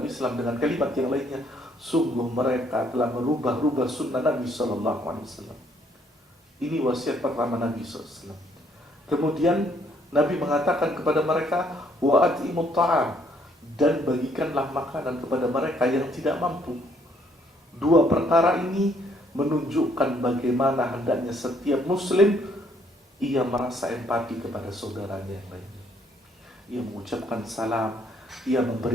Islam dengan kalimat yang lainnya, sungguh mereka telah merubah sunnah Nabi SAW. Ini wasiat pertama Nabi SAW. Kemudian Nabi mengatakan kepada mereka, wa at'imut ta'am, dan bagikanlah makanan kepada mereka yang tidak mampu. Dua perkara ini menunjukkan bagaimana hendaknya setiap muslim ia merasa empati kepada saudaranya yang lainnya. Ia mengucapkan salam, ia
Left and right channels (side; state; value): both; normal; correlation 0.67